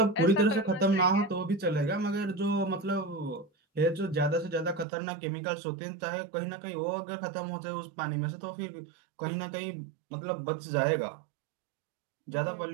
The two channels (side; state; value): left; drops out; at 4.9 s